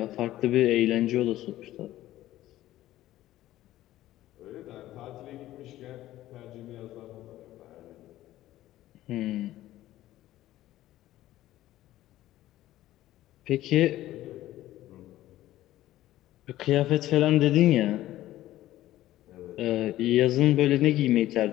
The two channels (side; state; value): right; quieter; 14.8 dB